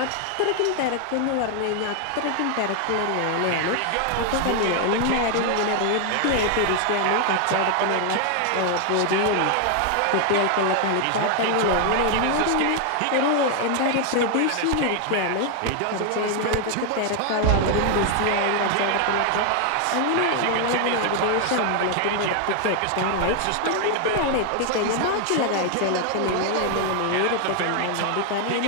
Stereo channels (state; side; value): different; both; correlation 0.00